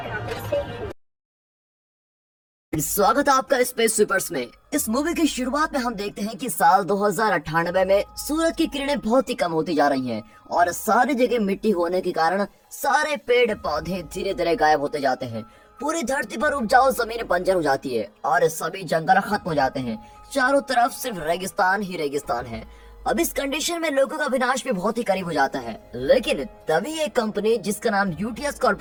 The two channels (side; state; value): both; identical; correlation 1.00